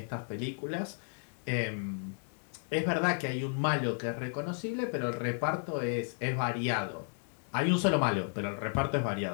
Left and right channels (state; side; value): silent; right; 56 dB below the other